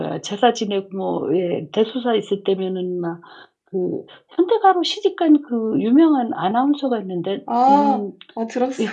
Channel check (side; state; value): both; identical; correlation 1.00